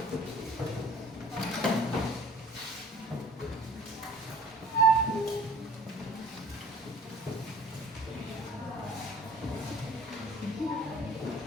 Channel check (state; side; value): normal; both; correlation 0.49